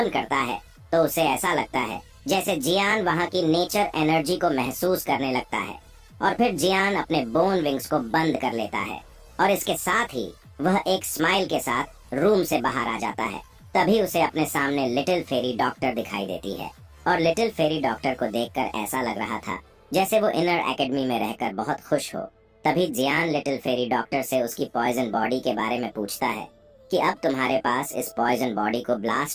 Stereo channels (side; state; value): both; identical; correlation 1.00